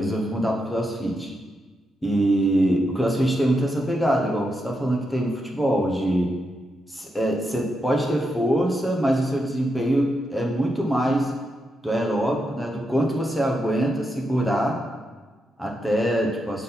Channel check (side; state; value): both; normal; correlation 0.84